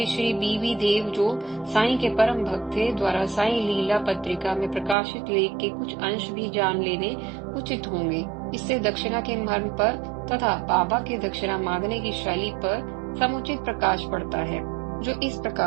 श्री बीवी देव, जो साईं के परम भक्त थे, द्वारा साईं लीला पत्रिका में प्रकाशित लेख के कुछ अंश भी जान लेने उचित होंगे। इससे दक्षिणा के मर्म पर तथा बाबा के दक्षिणा मांगने की शैली पर समुचित प्रकाश पड़ता है, जो इस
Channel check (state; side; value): drops out; left; at 5.0 s